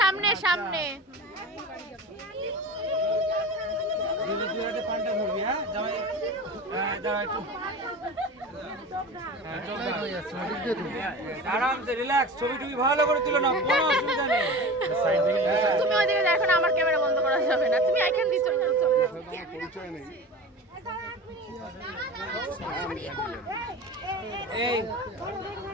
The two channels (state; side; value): normal; both; correlation 0.33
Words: সামনে সামনে। তুই একটা পাল্টা ধরবি, হ্যাঁ জামাই, হ্যাঁ দাঁড়া একটু, আরামসে রিল্যাক্স, ছবি টবি ভালো করে তুলে নাও, কোনো অসুবিধা নেই। তুমি ওইদিকে দেখো না, আমার ক্যামেরা বন্ধ করা যাবে না, তুমি এখান দিয়ে চলে যাও। এই